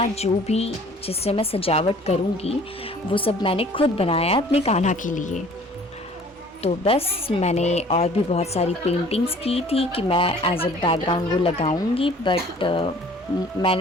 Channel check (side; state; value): both; normal; correlation 0.51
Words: जो भी जिससे मैं सजावट करूँगी वो सब मैंने खुद बनाया अपने कान्हा के लिए। तो बस मैंने और भी बहुत सारी पेंटिंग्स की थी कि मैं एज अ बैकग्राउंड वो लगाऊंगी, बट